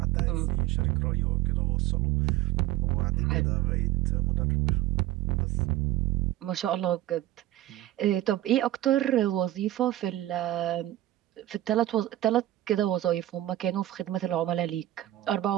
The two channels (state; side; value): quieter; left; 14.8 dB